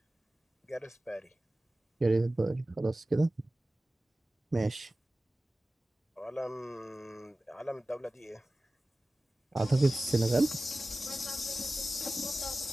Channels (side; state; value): both; normal; correlation 0.96